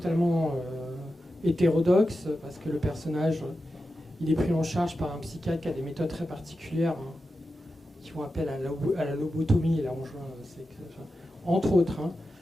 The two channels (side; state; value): both; normal; correlation 0.91